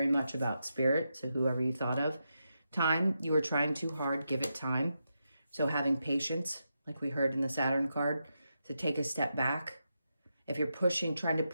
much about spirit. So whoever you thought of. Time, you are trying too hard. Give it time. So having patience, like we heard in the Saturn card, to take a step back. If you're trying to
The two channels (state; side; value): inverted; both; correlation -0.86